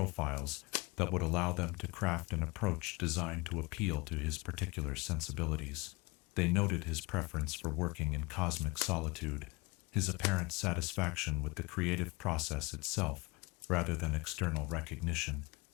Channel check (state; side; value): quieter; right; 25.2 dB